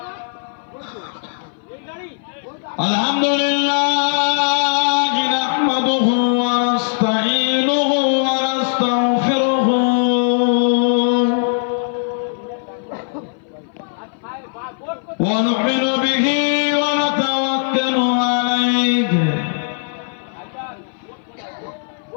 الحمد لله نحمده ونستعينه ونستغفره ونؤمن به ونتوكل عليه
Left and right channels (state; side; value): silent; right; 59 dB below the other